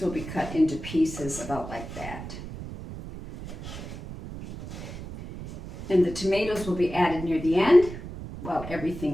will be cut into pieces about like that. And the tomatoes will be added near the end. while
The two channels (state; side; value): noise; right; rumble, 11 dB below the sound